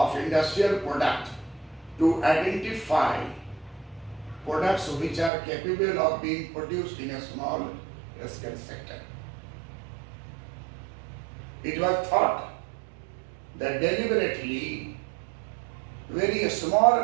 industrial product to identify products which are capable of being produced in a small scale sector. It was thought that deliberately very small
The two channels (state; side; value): drops out; left; at 5.3 s